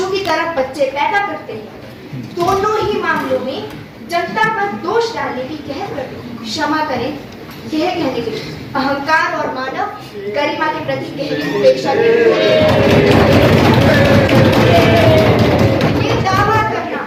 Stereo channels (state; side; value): identical; both; correlation 1.00